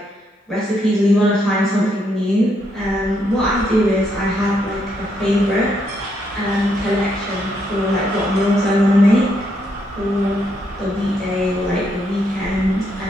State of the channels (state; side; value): normal; both; correlation 0.76